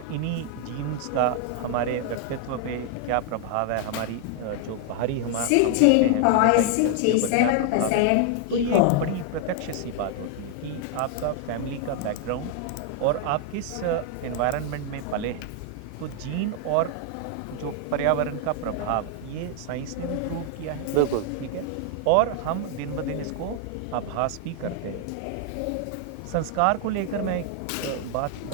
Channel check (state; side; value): different; both; correlation 0.00